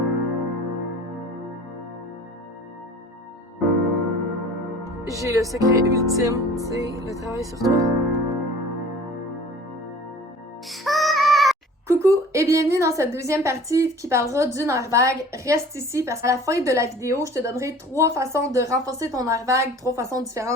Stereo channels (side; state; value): both; normal; correlation 0.46